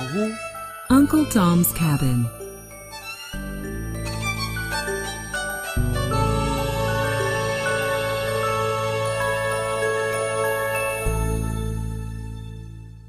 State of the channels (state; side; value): identical; both; correlation 1.00